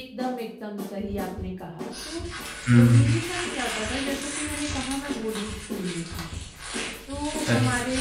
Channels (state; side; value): identical; both; correlation 1.00